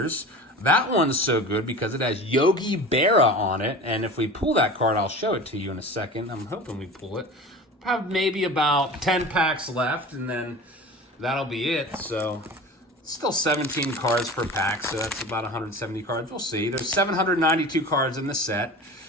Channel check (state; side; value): normal; both; correlation 0.35